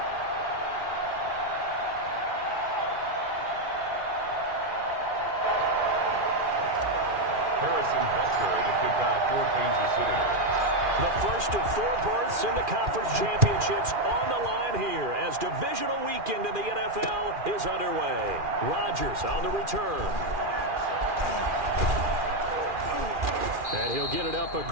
Harrison Butker to kick off for Kansas City. The first of 4 berths in the conference championships on the line here as divisional weekend in the NFL is underway. Rodgers on the return. And he'll get it up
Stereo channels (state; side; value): late; left; 2.4 ms